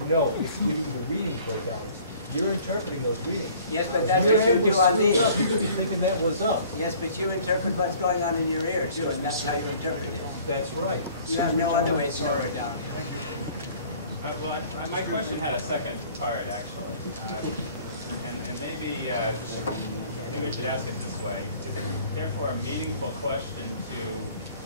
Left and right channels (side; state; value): both; inverted; correlation -0.52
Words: No, it's giving you the readings where down is. You're interpreting those readings. Yes, but that's what you do on these. You could be thinking that was up. Yes, but you interpret what's going on in your ear, too, and that's how you interpret it. That's right. You have no other way to know where down is. Well, my question had a second part, actually. And maybe we should ask it this way. Is it therefore a meaningful question